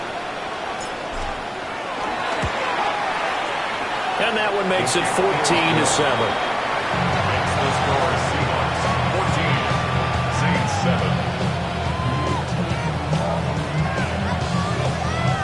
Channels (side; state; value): both; identical; correlation 1.00